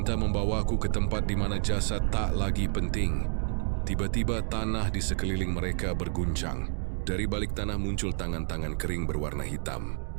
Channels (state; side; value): silent; left; digital silence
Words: membawaku ke tempat di mana jasad tak lagi penting. Tiba-tiba tanah di sekeliling mereka berguncang. Dari balik tanah muncul tangan-tangan kering berwarna hitam,